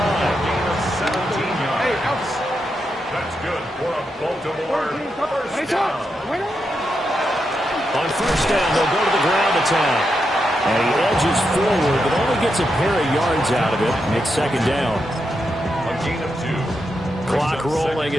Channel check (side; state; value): both; normal; correlation 0.85